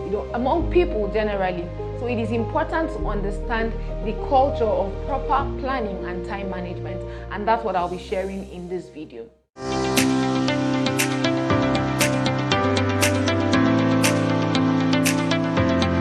among people generally. So it is important to understand the culture of proper planning and time management, and that's what I'll be sharing in this video.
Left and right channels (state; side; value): identical; both; correlation 1.00